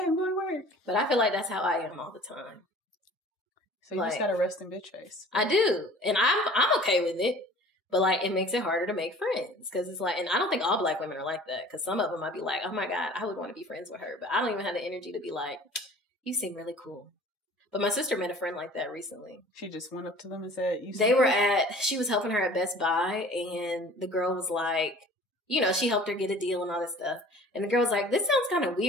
going to work. But I feel like that's how I am all the time. So you just got to rest in bitch face. I do. And I'm okay with it. But, like, it makes it harder to make friends. Because it's like, and I don't think all Black women are like that. Because some of them might be like, oh, my God, I would want to be friends with her. But I don't even have the energy to be like, you seem really cool. But my sister met a friend like that recently. She just went up to them and said, she was helping her at Best Buy. And the girl was like, you know, she helped her get a deal and all this stuff. And the girl was like, this sounds kind of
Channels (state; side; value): normal; both; correlation 0.47